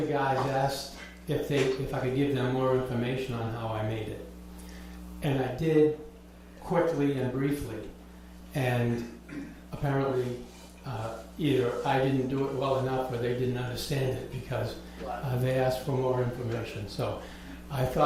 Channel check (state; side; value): identical; both; correlation 1.00